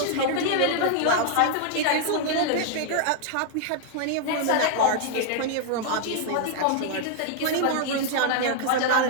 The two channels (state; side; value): different; both; correlation 0.00